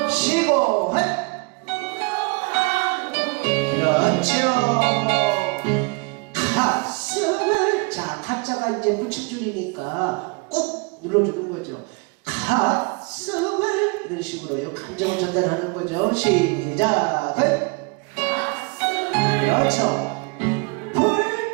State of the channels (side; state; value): left; quieter; 31.2 dB